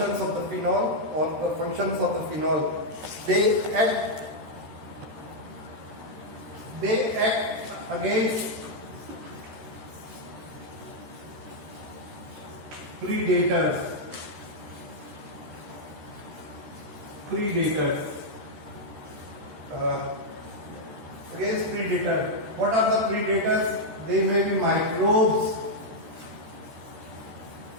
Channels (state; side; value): late; left; 13 ms